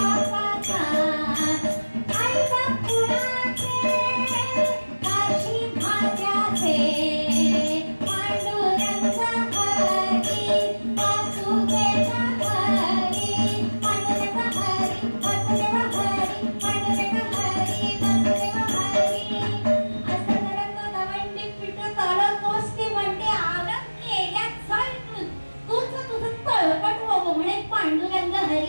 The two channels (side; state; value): both; inverted; correlation -1.00